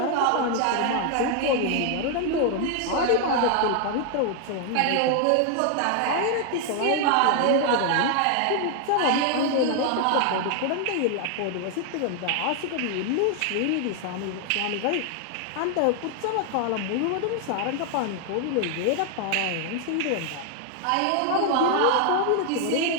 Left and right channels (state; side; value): different; both; correlation 0.00